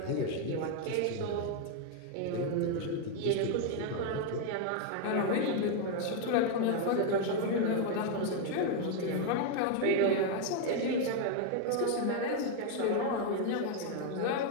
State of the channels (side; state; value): both; different; correlation 0.01